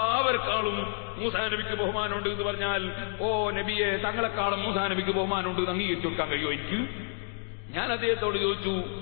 മൂസാ നബിക്ക് ബഹുമാനമുണ്ട് എന്ന് പറഞ്ഞാൽ, ഓ നബിയെ, തങ്ങളെക്കാളും മൂസാ നബിക്ക് ബഹുമാനമുണ്ട് എന്ന് അംഗീകരിച്ചു കൊടുക്കാൻ കഴിയുമോ എനിക്ക്? ഞാൻ അദ്ദേഹത്തോട് ചോദിച്ചു,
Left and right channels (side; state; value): right; silent; 58 dB below the other